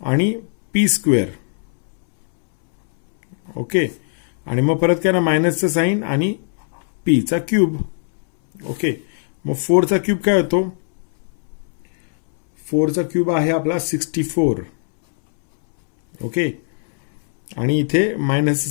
आणि पी स्क्वेअर. ओके, आणि मग परत काय ना मायनसचं साईन आणि पीचा क्यूब. ओके, मग 4चा क्यूब काय होतो 4चा क्यूब आहे आपला 64. ओके, आणि इथे मायनसचं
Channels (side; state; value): right; silent; 66 dB below the other